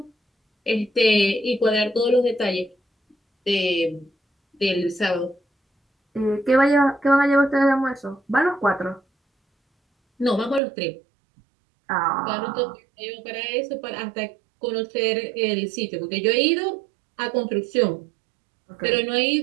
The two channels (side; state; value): left; drops out; at 10.6 s